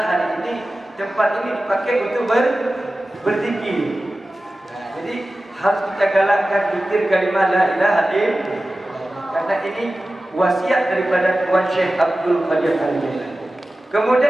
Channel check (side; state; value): both; normal; correlation 0.95